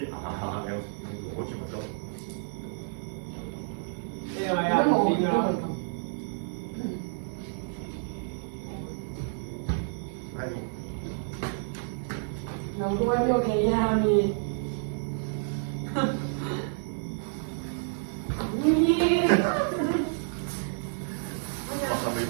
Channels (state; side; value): silent; left; 58 dB below the other